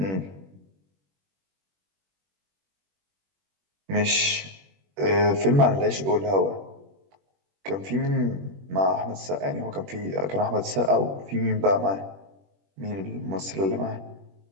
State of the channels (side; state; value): left; late; 21 ms